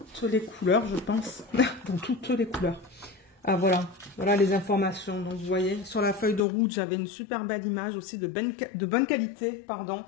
les couleurs, je pense. Dans toutes les couleurs. Ah, voilà. Voilà les informations. Donc, vous voyez, sur la feuille de route, j'avais une super belle image aussi de bonne qualité, pardon.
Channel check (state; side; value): drops out; right; at 6.4 s